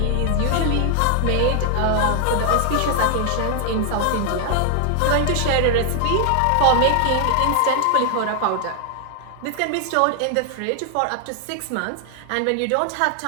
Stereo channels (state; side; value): different; both; correlation 0.00